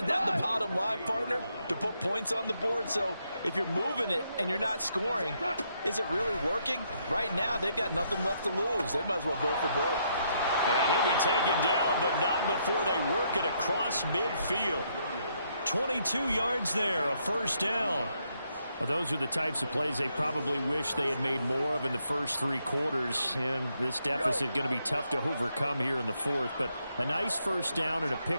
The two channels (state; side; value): inverted; both; correlation -0.75